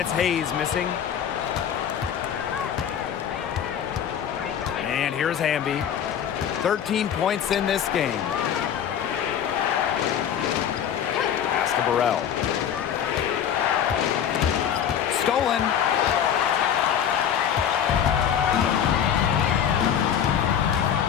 Hayes missing. And here's Hamby. 13 points in this game. Pass to Burrell. Stolen.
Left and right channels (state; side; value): quieter; right; 9.0 dB